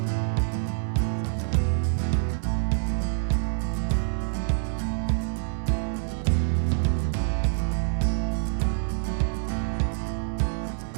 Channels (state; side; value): silent; left; digital silence